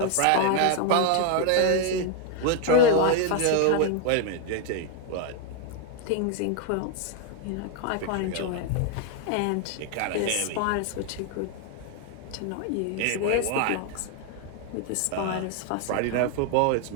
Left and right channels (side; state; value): both; different; correlation 0.00